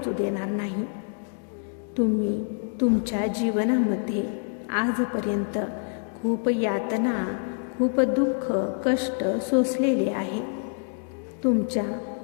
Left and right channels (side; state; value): right; silent; 61 dB below the other